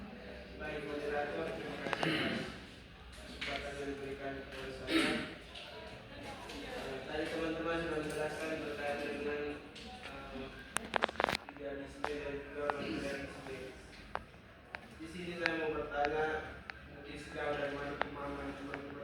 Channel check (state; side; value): identical; both; correlation 1.00